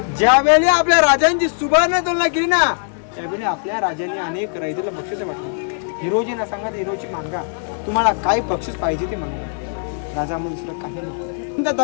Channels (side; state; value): right; silent; digital silence